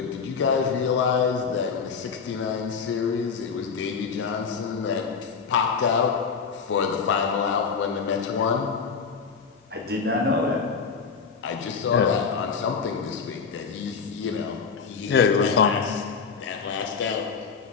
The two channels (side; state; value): right; quieter; 5.7 dB